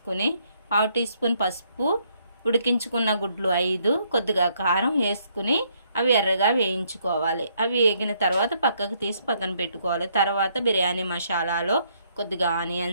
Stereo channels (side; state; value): both; inverted; correlation -0.70